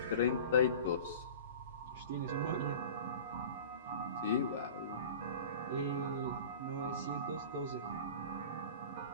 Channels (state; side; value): inverted; both; correlation -0.38